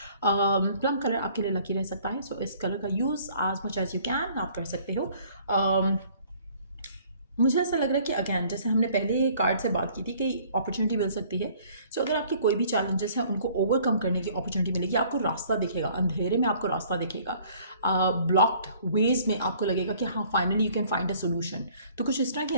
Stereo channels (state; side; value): inverted; both; correlation -0.56